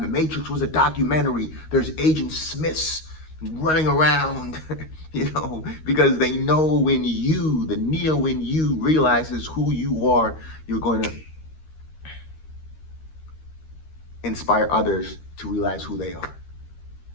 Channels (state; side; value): late; right; 13 ms